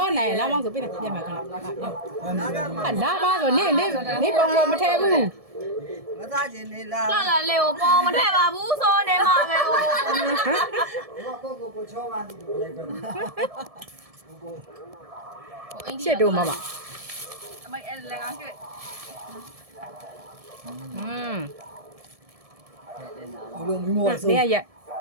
ာ်နိုင်လာမောင်းဆိုပြနေပြန်မှာခဏလာပါဆိုနေပုံလို့မထဲဘူးမသားချင်းနေလားလာလာလေကိုပေါ်မထည့်ပါဘူးဆိုနေမှာပဲဟိုကိုချောပါနေတယ်လိုက်ပါရှစ်တို့မမအမေအဲ့လည်းကောင်းကျွတ်ဘလိုမိမောဆိုနေရက်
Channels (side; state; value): left; late; 1.7 ms